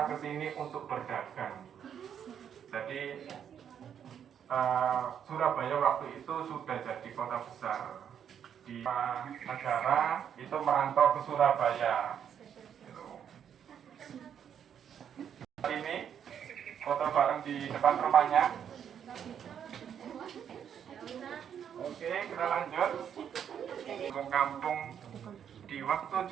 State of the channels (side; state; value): left; quieter; 8.6 dB